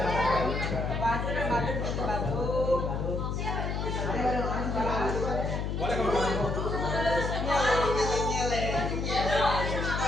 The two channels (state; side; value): noise; left; hum, 2 dB below the sound